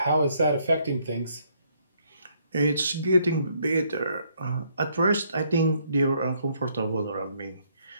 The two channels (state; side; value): inverted; both; correlation -0.69